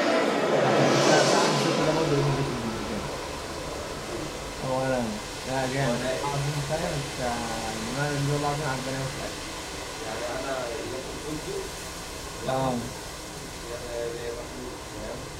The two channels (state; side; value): identical; both; correlation 1.00